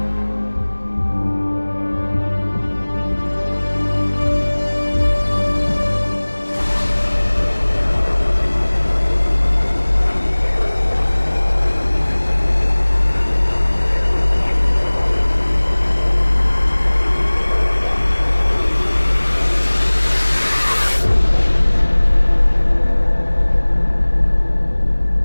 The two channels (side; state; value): both; inverted; correlation -1.00